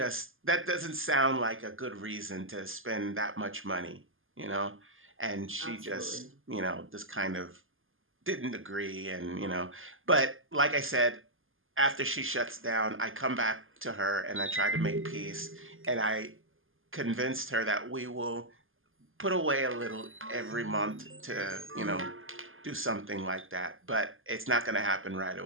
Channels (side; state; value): left; late; 0.59 ms